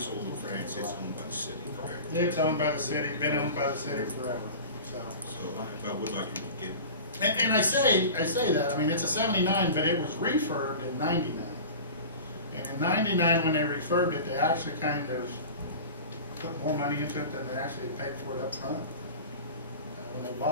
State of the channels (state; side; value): inverted; both; correlation -0.34